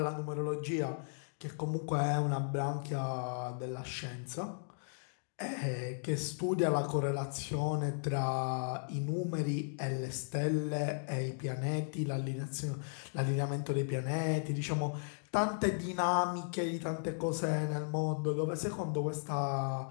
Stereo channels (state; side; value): silent; right; digital silence